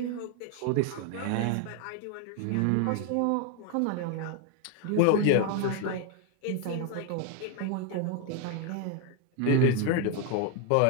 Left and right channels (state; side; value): different; both; correlation 0.01